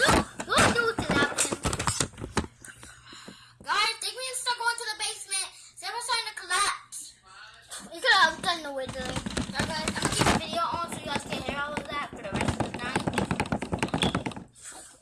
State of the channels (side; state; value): both; identical; correlation 1.00